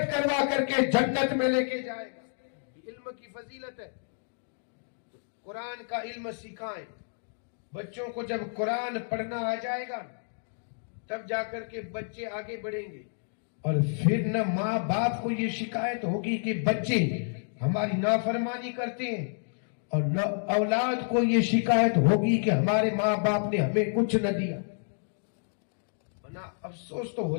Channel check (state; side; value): silent; right; digital silence